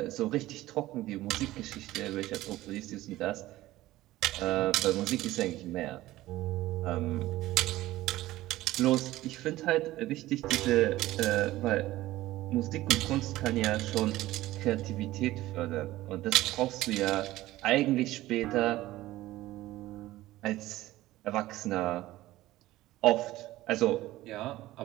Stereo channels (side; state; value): left; quieter; 16.5 dB